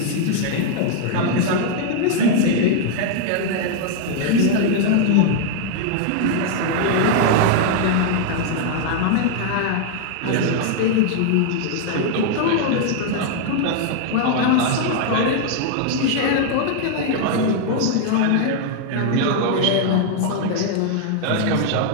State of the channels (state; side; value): different; both; correlation 0.00